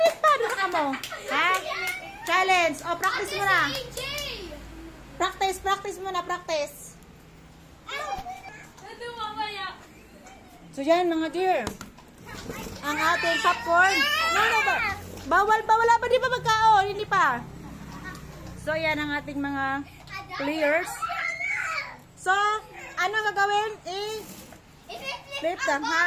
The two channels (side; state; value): both; identical; correlation 1.00